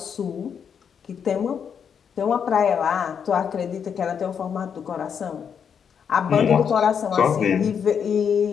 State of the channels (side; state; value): right; quieter; 7.3 dB